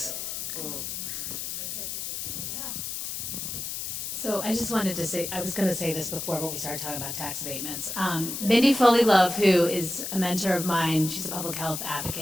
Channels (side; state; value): left; noise; hiss, 5 dB below the sound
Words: So I just wanted to say, I was going to say this before, but we started talking about tax abatements. Mindy Foley Love, who is a mentor of mine, she's a public health